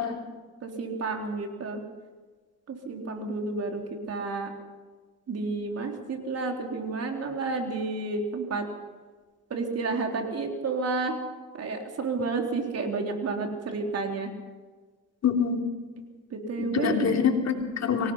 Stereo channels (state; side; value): normal; both; correlation 0.17